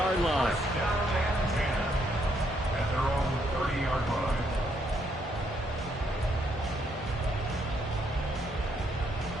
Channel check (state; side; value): normal; both; correlation 0.73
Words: line. At their own 30-yard line.